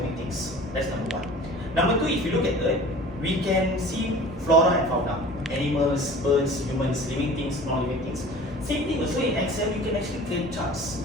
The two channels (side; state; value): both; normal; correlation 0.43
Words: things. That's number one. Number two, if you look at Earth, we can see flora and fauna. Animals, birds, humans, living things, non-living things. Same thing also in Excel, you can actually create charts.